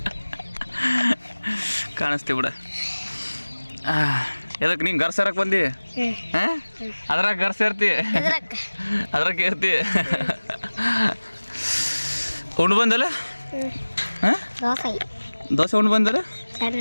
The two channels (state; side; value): inverted; both; correlation -1.00